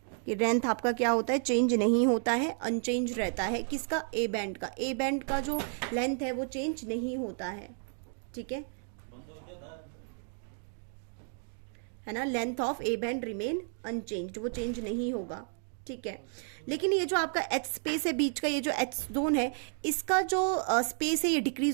कि लेंथ आपका क्या होता है, चेंज नहीं होता है, अनचेंज रहता है। किसका? ए बैंड का। ए बैंड का जो लेंथ है वो चेंज नहीं होता है, ठीक है ना। Length of A band remain unchanged, वो चेंज नहीं होगा, ठीक है। लेकिन ये जो आपका एच स्पेस है बीच का, ये जो एच जोन है, इसका जो स्पेस है ये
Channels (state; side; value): silent; left; 56 dB below the other